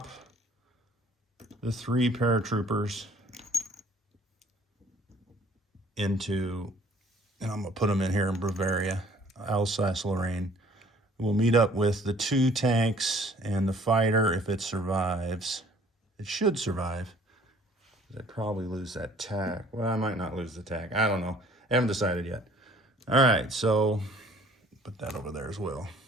the 3 paratroopers into, and I'm going to put them in here in Bavaria, Alsace-Lorraine. We'll meet up with the 2 tanks and the fighter if it survives. It should survive. I'd probably lose that tack. Well, I might not lose the tack. I don't know. I haven't decided yet. All right, so put that over there as well.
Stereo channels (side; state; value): both; normal; correlation 0.55